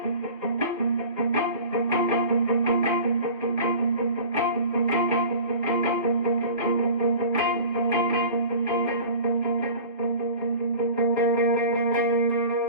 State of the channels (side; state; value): both; inverted; correlation -0.40